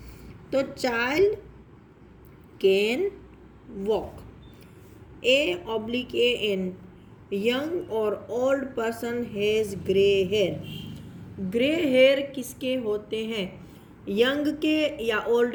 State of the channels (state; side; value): identical; both; correlation 1.00